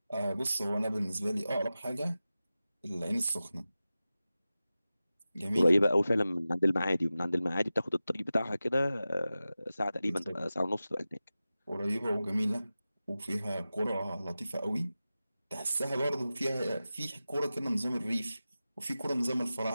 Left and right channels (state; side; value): inverted; both; correlation -0.95